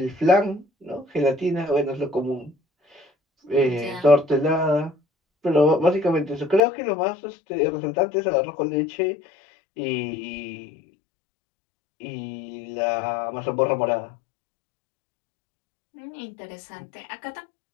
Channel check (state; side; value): drops out; right; at 6.6 s